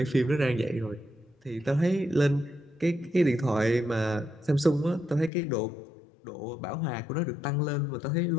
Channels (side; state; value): right; drops out; at 5.3 s